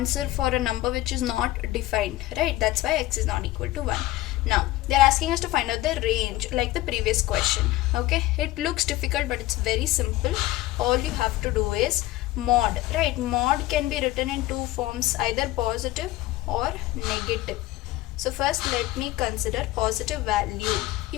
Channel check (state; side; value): quieter; right; 17.0 dB